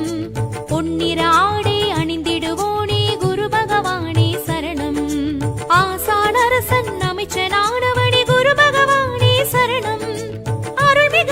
பொன்னிற ஆடை அணிந்திடுவோனே குரு பகவானே சரணம் ஆசானரசன் அமைச்சனானவனே குரு பகவானே சரணம்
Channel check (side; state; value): both; identical; correlation 1.00